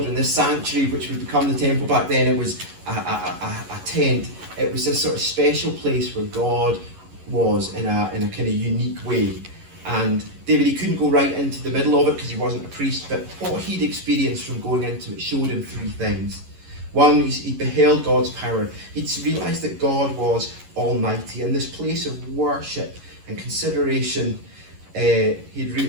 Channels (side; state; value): left; late; 11 ms